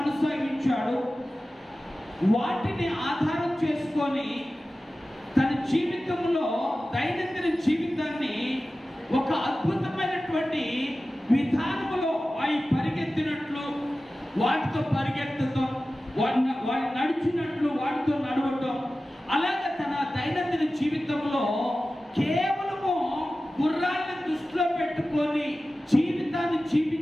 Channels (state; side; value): normal; both; correlation 0.95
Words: వాటిని ఆధారం చేసుకొని తన జీవితంలో దైనందిన జీవితాన్ని ఒక అద్భుతమైనటువంటి విధానంలో అవి పరిగెత్తినట్లు, వాటితో పరిగెత్తడం, వాటి నడిచినట్లు వాటితో నడవటం, అలాగే తన దైనందిన జీవితంలో కేవలము గుర్రాలను దృష్టిలో పెట్టుకొని జీవితాన్ని